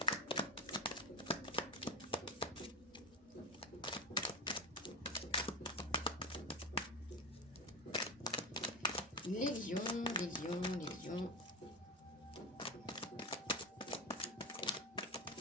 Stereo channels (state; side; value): normal; both; correlation 0.19